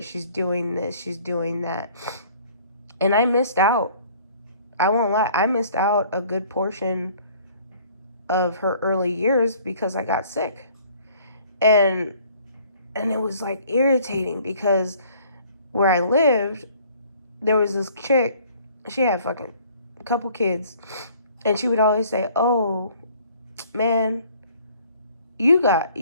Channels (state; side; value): inverted; both; correlation -0.56